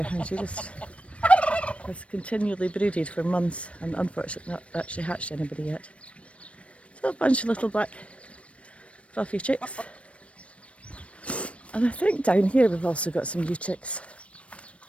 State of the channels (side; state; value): right; late; 0.062 ms